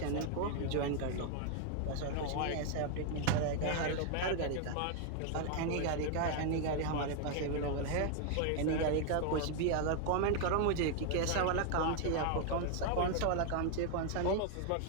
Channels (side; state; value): both; different; correlation 0.00